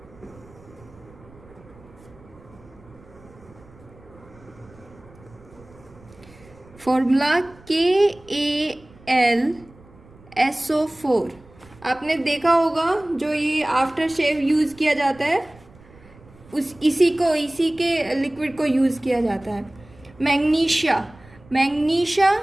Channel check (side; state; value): right; noise; rumble, 24 dB below the sound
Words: Formula KAlSO4। आपने देखा होगा जो ये आफ्टर शेव यूज़ किया जाता है इसी के लिक्विड को यूज़ किया जाता है। Magnesia